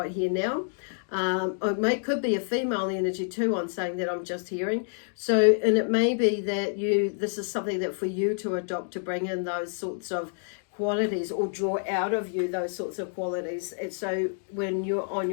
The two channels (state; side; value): silent; right; digital silence